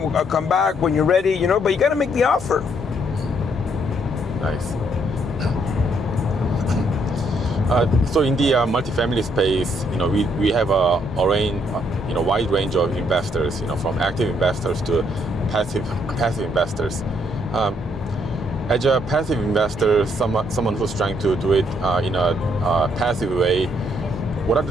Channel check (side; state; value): both; normal; correlation 0.71